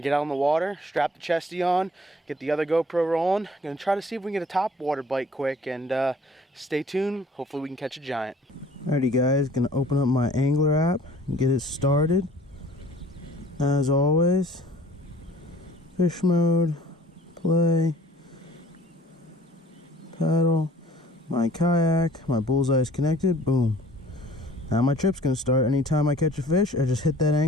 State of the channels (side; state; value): both; normal; correlation 0.52